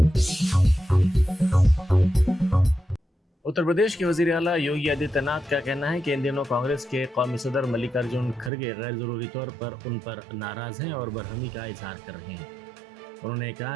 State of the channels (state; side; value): drops out; left; at 8.5 s